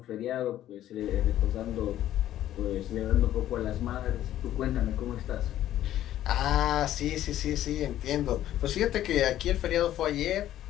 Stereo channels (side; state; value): right; quieter; 12.6 dB